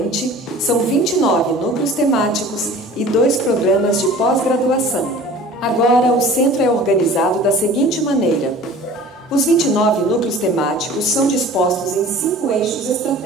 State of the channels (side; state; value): both; normal; correlation 0.44